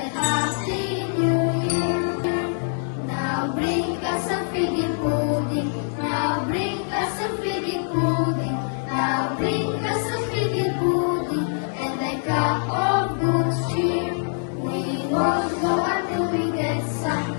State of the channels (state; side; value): silent; right; digital silence